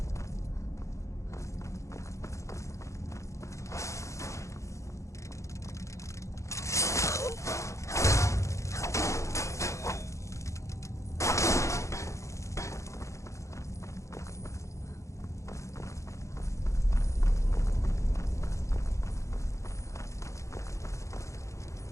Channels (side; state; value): right; late; 0.15 ms